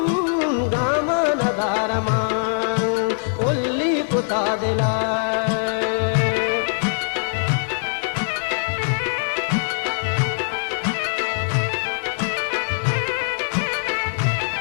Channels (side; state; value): right; silent; digital silence